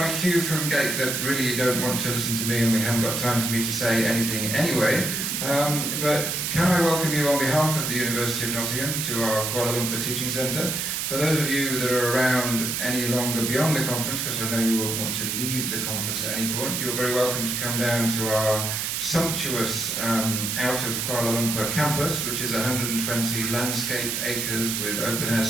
cue from Gate that really you don't want to listen to me and we haven't got time for me to say anything anyway. But can I welcome you on behalf of the University of Nottingham to our Kuala Lumpur Teaching Centre. For those of you that are around any longer beyond the conference, because I know you will want to leave the conference at any point, you're very welcome to come down to our sumptuous out of Kuala Lumpur campus, which is 120 landscaped acres with open-air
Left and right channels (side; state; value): right; noise; hiss, 1 dB below the sound